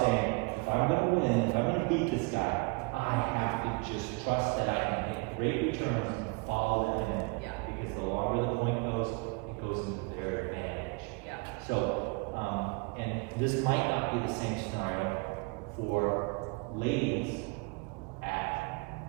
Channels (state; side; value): quieter; left; 30.1 dB